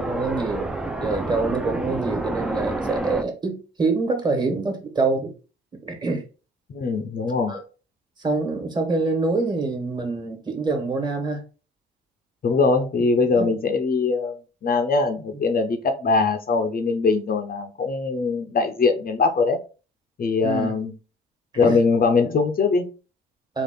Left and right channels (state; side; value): normal; both; correlation 0.50